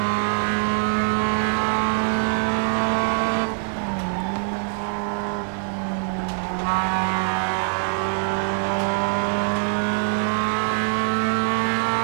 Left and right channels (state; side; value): silent; left; 63 dB below the other